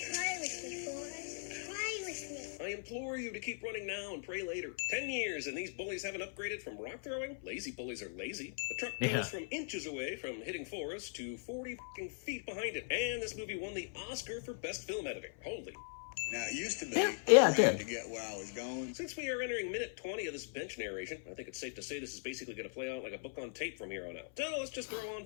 Try with me, Forrest. Try with me. I implore you to keep running now and pray later. 10 years and these bullies haven't upgraded from rock throwing? Lazy bullies are lazy. The truck goes from inches away from hitting Forrest to 40 fucking feet behind it. And this movie won the Oscar for Best Film Editing. Holy. Now, it used to be Yeah, it trying did. to get where I was going. Since we are entering minute 20 of this bench narration, I think it's safe to say this is basically going to play out like a book on tape from here on out. So let's just throw on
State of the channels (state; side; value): silent; right; 51 dB below the other